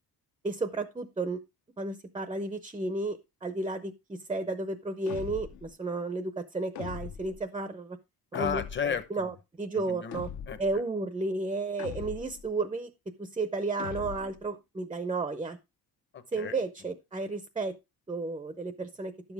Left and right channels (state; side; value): normal; both; correlation 0.43